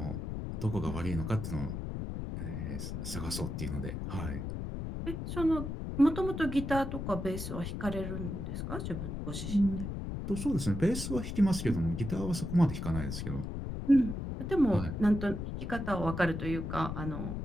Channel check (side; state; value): left; noise; rumble, 5 dB below the sound